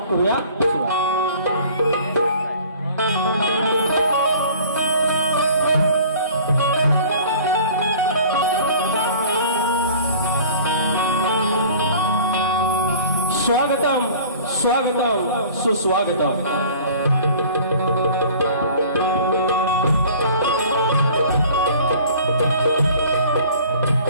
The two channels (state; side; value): inverted; both; correlation -0.46